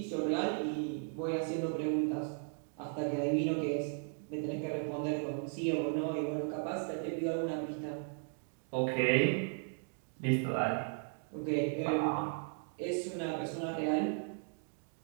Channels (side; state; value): left; silent; 54 dB below the other